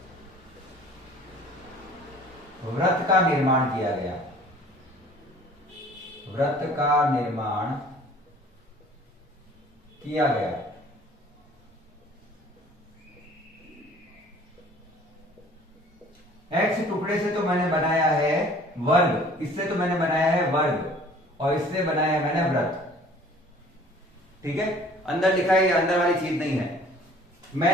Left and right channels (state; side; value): normal; both; correlation 0.51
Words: वृत्त का निर्माण किया गया। वृत्त का निर्माण किया गया। एक्स टुकड़े से तो मैंने बनाया है वर्ग, इससे तो मैंने बनाया है वर्ग, और इससे बनाया है मैंने वृत्त। ठीक है, अंदर लिखा है, अंदर वाली चीज नहीं है।